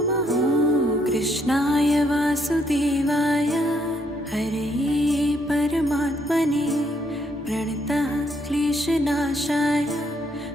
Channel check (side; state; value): both; normal; correlation 0.72